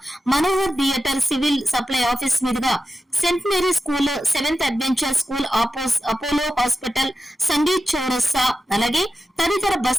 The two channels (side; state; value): both; normal; correlation 0.91